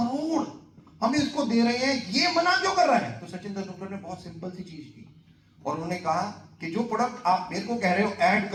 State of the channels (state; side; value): identical; both; correlation 1.00